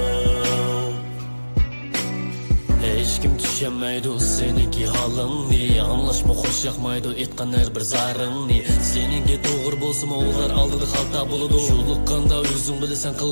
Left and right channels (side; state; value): both; inverted; correlation -1.00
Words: Hech kim tushunmaydi seniki holingni, anglashma xo'sh yoqmaydi aytgan har bir zaringni. Seninki to'g'ri bo'lsa ular oldida xalta bo'ladi, yo'liqqanda o'zing bilasan